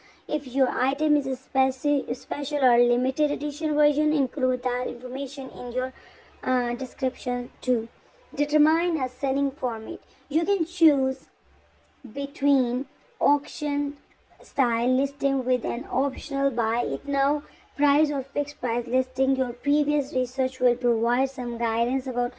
If your item is a special or limited edition version, include that information in your description too. Determine a selling format. You can choose between auction style listing with an optional buy it now price or fixed price listing. Your previous research will provide some guidance about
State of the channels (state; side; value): identical; both; correlation 1.00